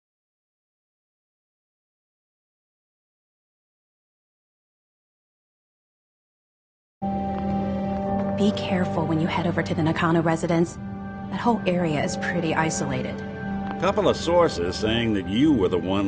Be careful when you head over to the Nakano residence. That whole area is pretty isolated. Couple of sources saying that you were the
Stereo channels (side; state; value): both; identical; correlation 1.00